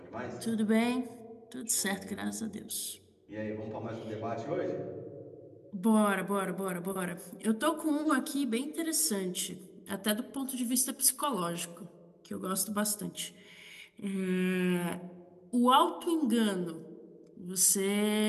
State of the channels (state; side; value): identical; both; correlation 1.00